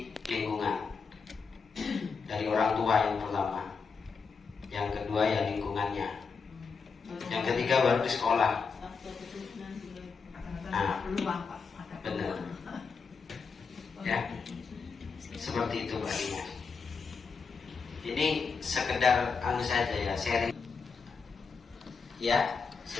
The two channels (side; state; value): right; quieter; 5.2 dB